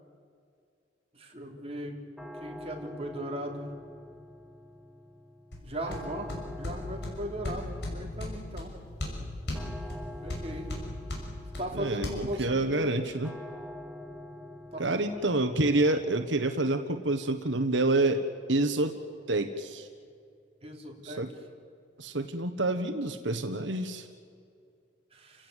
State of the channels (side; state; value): both; normal; correlation 0.25